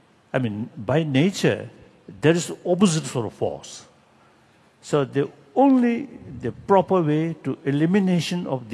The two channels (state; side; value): identical; both; correlation 1.00